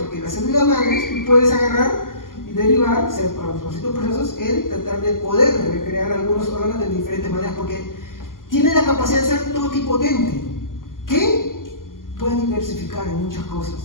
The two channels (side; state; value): right; late; 0.90 ms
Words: las células madres tú puedes agarrar y derivar, para los distintos procesos, el tratar de poder recrear algunos órganos de diferentes maneras, porque tiene la capacidad de ser totipotente, que puede diversificar en muchas